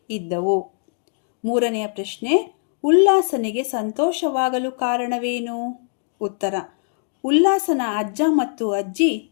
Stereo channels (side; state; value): right; silent; digital silence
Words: ಇದ್ದವು. 3ನೇ ಪ್ರಶ್ನೆ, ಉಲ್ಲಾಸನಿಗೆ ಸಂತೋಷವಾಗಲು ಕಾರಣವೇನು? ಉತ್ತರ, ಉಲ್ಲಾಸನ ಅಜ್ಜ ಮತ್ತು ಅಜ್ಜಿ